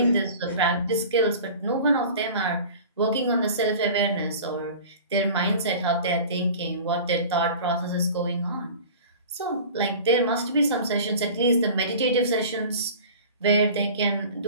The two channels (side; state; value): both; inverted; correlation -0.40